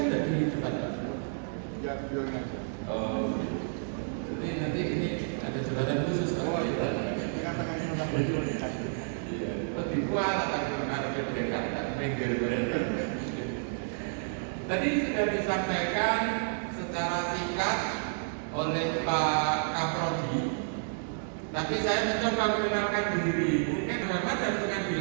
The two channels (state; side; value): silent; left; digital silence